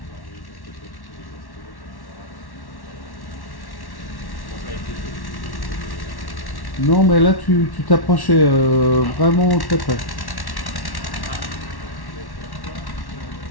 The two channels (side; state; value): right; late; 1.1 ms